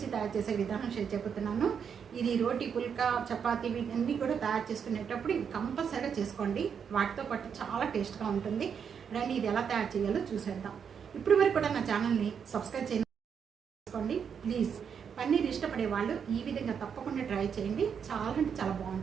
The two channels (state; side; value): quieter; left; 7.2 dB